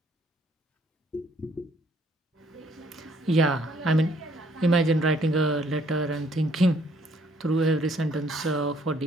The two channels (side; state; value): both; normal; correlation 0.64